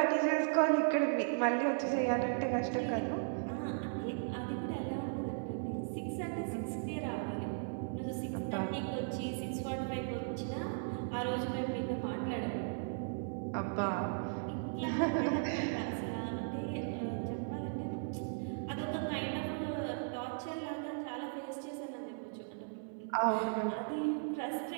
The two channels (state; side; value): silent; left; 53 dB below the other